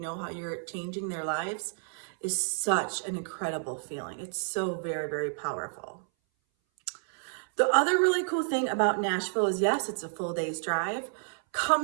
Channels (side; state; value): left; silent; 58 dB below the other